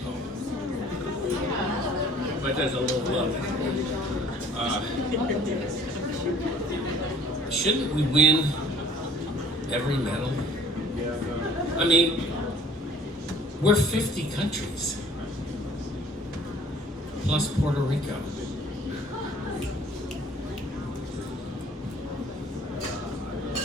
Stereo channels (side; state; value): both; normal; correlation 0.51